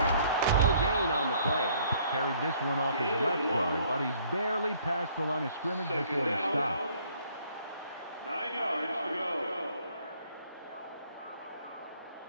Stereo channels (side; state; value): both; inverted; correlation -0.61